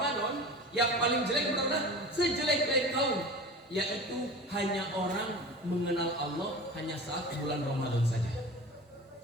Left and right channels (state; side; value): normal; both; correlation 0.35